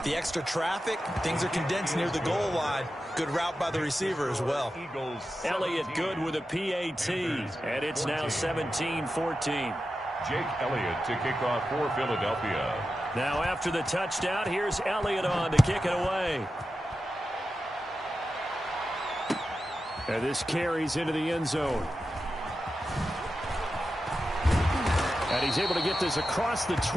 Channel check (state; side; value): normal; both; correlation 0.91